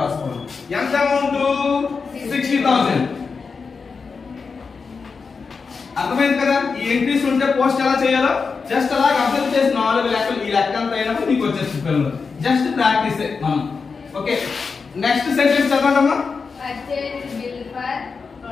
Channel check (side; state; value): right; quieter; 5.0 dB